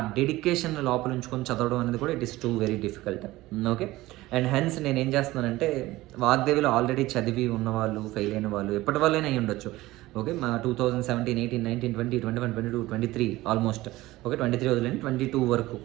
డెడికేషన్ లోపల ఉంచుకొని చదవడం అనేది కూడా it is two very difficult. Okay, and hence నేను ఏం చేస్తున్నానంటే, వాగ్దేవిలో ఆల్రెడీ చదివి ఉన్నవాళ్ళు, ఫెయిల్ అయిన వాళ్ళు, ఎప్పటి వాళ్ళైనా అయ్యి ఉండొచ్చు. ఓకే, మా 2017 18 19 20 21 22 23 ఆల్మోస్ట్. ఓకే, 23 వదిలేండి, 22 వరకు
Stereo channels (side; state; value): left; quieter; 18.0 dB